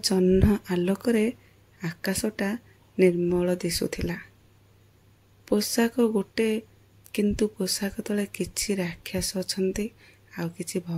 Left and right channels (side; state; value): both; identical; correlation 1.00